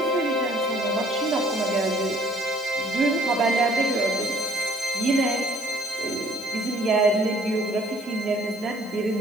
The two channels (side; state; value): right; noise; hiss, 25 dB below the sound